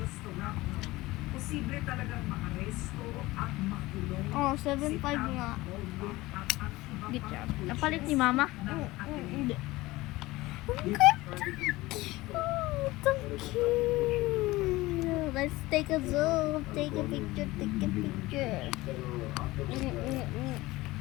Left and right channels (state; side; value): quieter; right; 19.5 dB